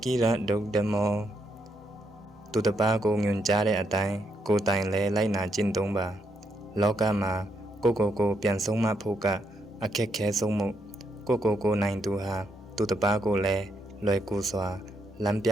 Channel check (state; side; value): normal; both; correlation 0.78